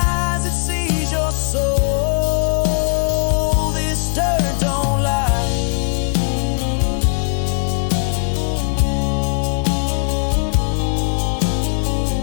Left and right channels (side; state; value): right; silent; 65 dB below the other